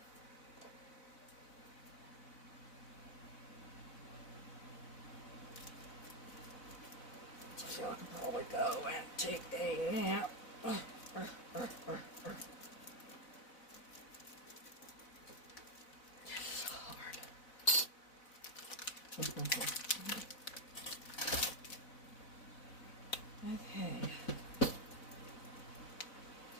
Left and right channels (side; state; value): right; late; 4.0 ms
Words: So I can probably go and take a nap. Okay.